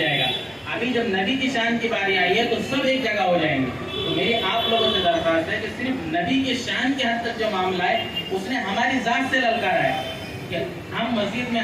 گا. ابھی جب نبی کی شان کی باری آئی ہے تو سب ایک جگہ ہو جائیں گے. تو میری آپ لوگوں سے درخواست ہے کہ صرف نبی کی شان کے حد تک جو معاملہ ہے اس نے ہماری ذات سے للکارا ہے کہ ہم مسجد میں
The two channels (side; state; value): both; identical; correlation 1.00